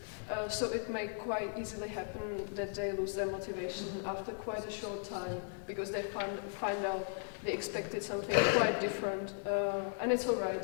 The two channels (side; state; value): right; silent; digital silence